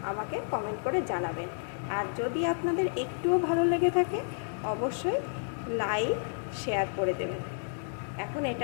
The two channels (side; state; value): right; silent; digital silence